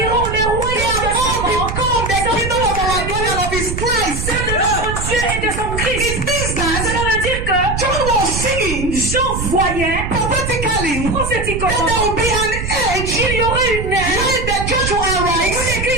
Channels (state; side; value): noise; right; rumble, 5 dB below the sound